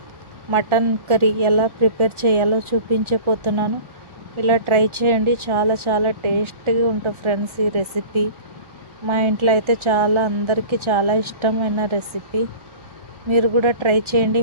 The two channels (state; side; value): late; left; 1.4 ms